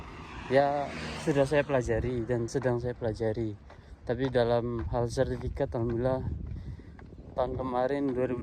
ya sudah saya pelajari dan sedang saya pelajari. Tapi dalam hal sertifikat alhamdulillah tahun kemarin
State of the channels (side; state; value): both; identical; correlation 1.00